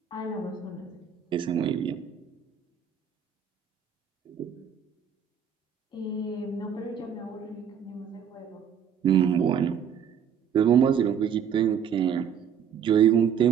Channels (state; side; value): quieter; left; 7.8 dB